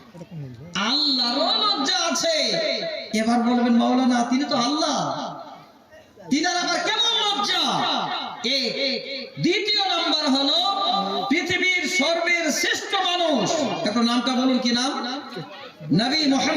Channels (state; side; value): identical; both; correlation 1.00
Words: আল্লাহরও লজ্জা আছে। এবার বলবেন মাওলানা তিনি তো আল্লাহ, তিনার আবার কেমন লজ্জা? দ্বিতীয় নাম্বার হলো পৃথিবীর সর্বের শ্রেষ্ঠ মানুষ, একটু নামটা বলুন, কি নাম? নবী